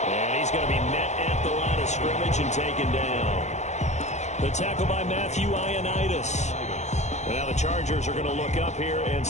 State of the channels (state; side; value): late; right; 0.33 ms